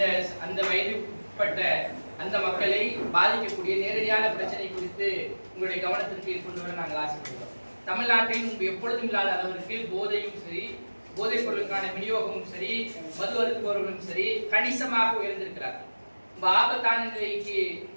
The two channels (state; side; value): inverted; both; correlation -1.00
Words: அந்த வயதுப்பட்ட அந்த மக்களை பாதிக்கக்கூடிய நேரடியான பிரச்சனை குறித்து உங்களுடைய கவனத்திற்கு கொண்டு வர நாங்கள் ஆசைப்படுகிறோம். தமிழ்நாட்டில் எப்பொழுதும் இல்லாத அளவிற்கு போதையும் சரி, போதைப் பொருளுக்கான விநியோகமும் சரி, மது அருந்துபவர்களும் சரி கணிசமாக உயர்ந்திருக்கிறார். ரொம்ப ஆபத்தான நிலைக்கு